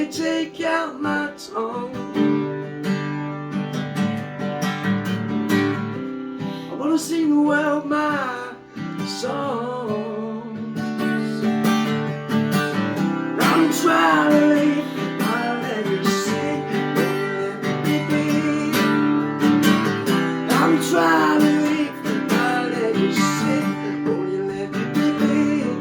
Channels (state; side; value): identical; both; correlation 1.00